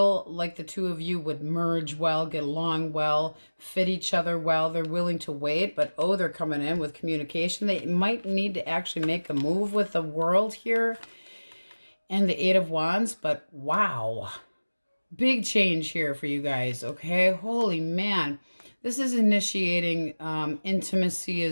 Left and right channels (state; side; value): inverted; both; correlation -1.00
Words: like the two of you would merge well, get along well, fit each other well. They're willing to wait, but they're coming in with communication. They might need to actually make a move with the world here and the Eight of Wands, but wow. Big change here for you guys, okay? Holy man. This is initiating intimacy